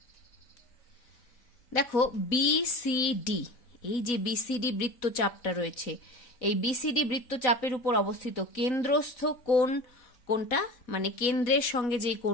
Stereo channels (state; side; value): late; right; 4.1 ms